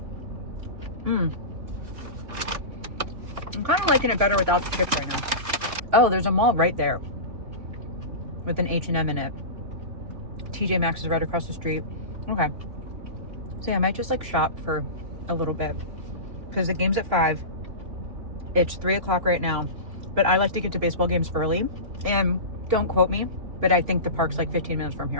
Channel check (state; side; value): late; left; 2.9 ms